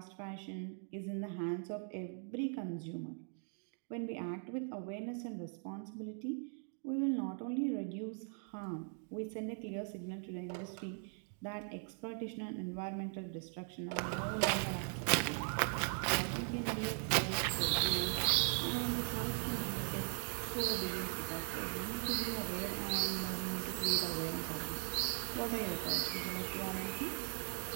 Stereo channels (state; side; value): silent; left; 51 dB below the other